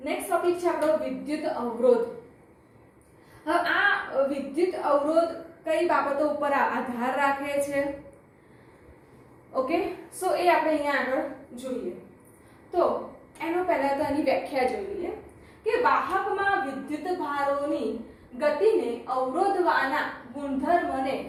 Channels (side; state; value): both; identical; correlation 1.00